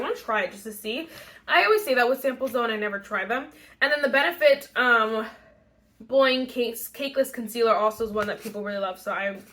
to try it just to see. I always say that with samples though, and I never try them. And then the Benefit Boing Cakeless Concealer also is one that people really love, so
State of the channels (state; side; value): identical; both; correlation 1.00